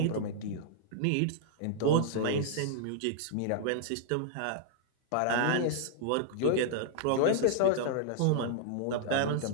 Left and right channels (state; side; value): different; both; correlation -0.01